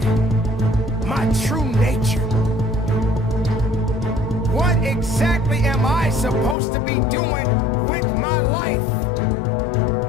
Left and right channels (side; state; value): right; drops out; at 6.6 s